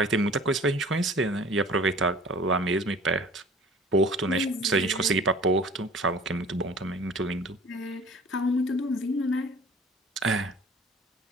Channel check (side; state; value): both; normal; correlation 0.46